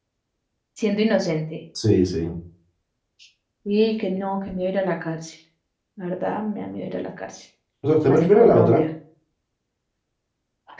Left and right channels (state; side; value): identical; both; correlation 1.00